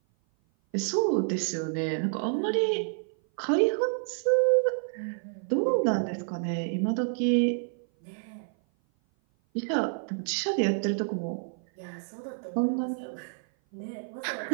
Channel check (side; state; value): left; silent; 56 dB below the other